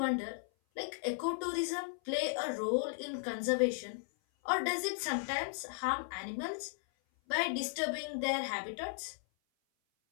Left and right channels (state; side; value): silent; right; 54 dB below the other